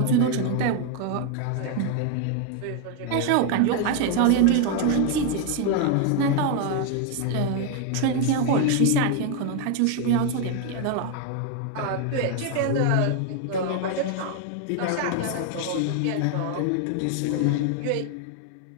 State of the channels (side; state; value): both; different; correlation 0.01